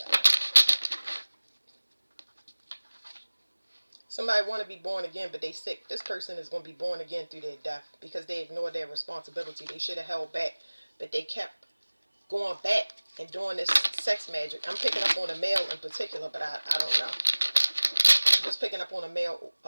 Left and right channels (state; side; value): inverted; both; correlation -1.00